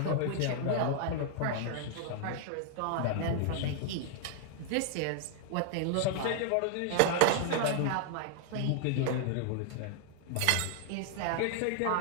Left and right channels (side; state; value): both; different; correlation 0.00